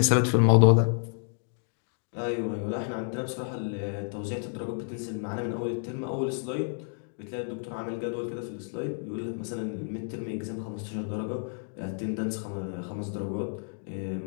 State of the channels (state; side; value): silent; right; 58 dB below the other